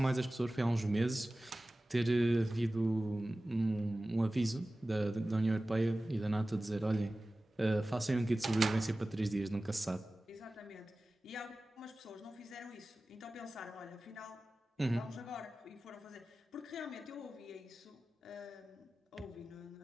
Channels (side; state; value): both; normal; correlation 0.97